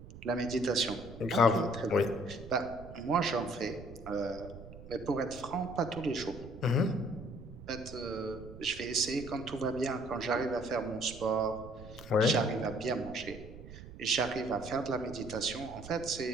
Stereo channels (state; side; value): noise; right; rumble, 15 dB below the sound